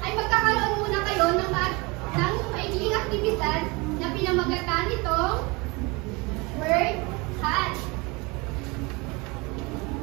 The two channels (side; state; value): left; quieter; 26.3 dB